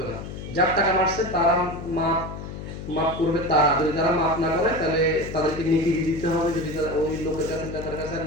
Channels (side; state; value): left; noise; hum, 9 dB below the sound